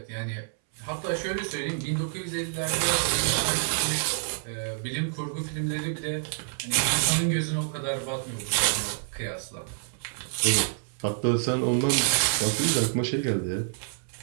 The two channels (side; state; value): left; silent; 60 dB below the other